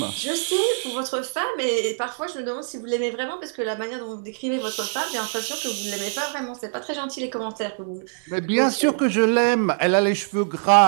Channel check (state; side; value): silent; left; digital silence